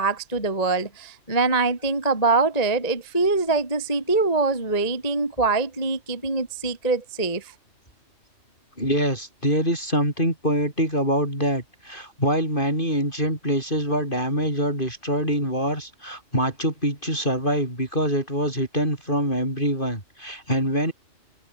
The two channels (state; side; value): late; right; 1.9 ms